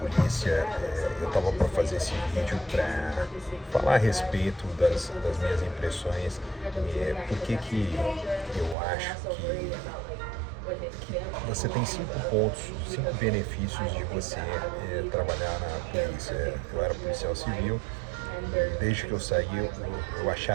eu estava para fazer esse vídeo para falar a respeito das minhas impressões, por que eu acho que você tem 5 pontos, 5 benefícios de você trabalhar na polícia. Eu era policial civil e desde que eu saí eu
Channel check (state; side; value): drops out; left; at 8.8 s